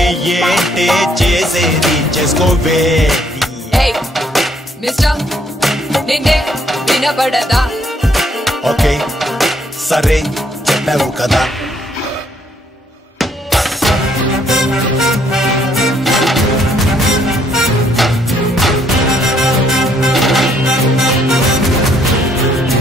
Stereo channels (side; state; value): both; normal; correlation 0.68